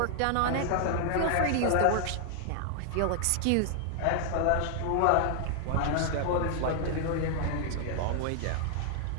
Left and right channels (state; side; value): different; both; correlation 0.00